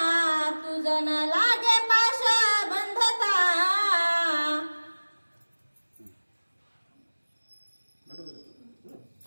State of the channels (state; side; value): inverted; both; correlation -1.00